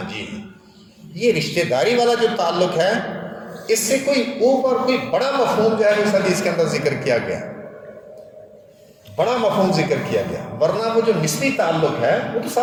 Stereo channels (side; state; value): both; identical; correlation 1.00